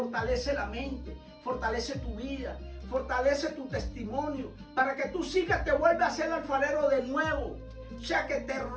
la mente, fortalece tu vida, fortalece tu testimonio, para que tú sigas, te vuelva a ser el alfarero de nuevo. O sea que te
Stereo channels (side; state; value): both; identical; correlation 1.00